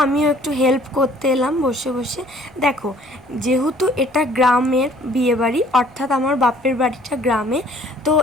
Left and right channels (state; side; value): noise; right; rumble, 29 dB below the sound